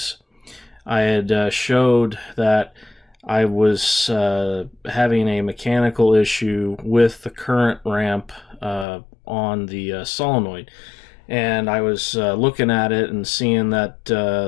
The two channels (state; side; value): drops out; right; at 8.8 s